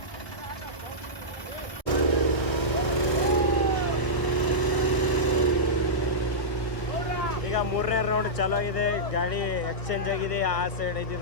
ಈಗ ಮೂರನೇ ರೌಂಡ್ ಚಾಲೂ ಆಗಿದೆ. ಗಾಡಿ ಎಕ್ಸ್ಚೇಂಜ್ ಆಗಿದೆ. ಆ ಸೈಡ್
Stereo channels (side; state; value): right; late; 1.7 ms